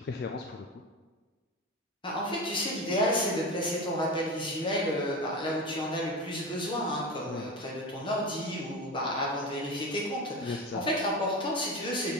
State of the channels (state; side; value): normal; both; correlation 0.25